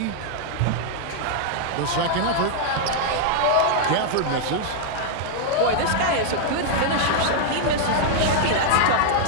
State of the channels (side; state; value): both; different; correlation -0.01